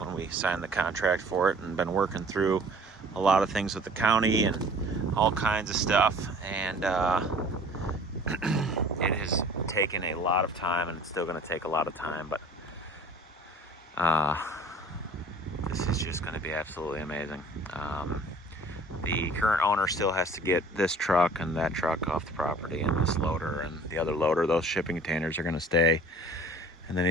we signed the contract for it, and been working through a lot of things with the county and all kinds of stuff. And it has taken a lot of time, and it's still going to take a lot of time, but this is just going to be absolutely amazing. The current owner still has to get this truck and that truck off the property, and this loader and the other loader. Those shipping containers are going to stay. And then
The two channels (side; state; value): both; normal; correlation 0.49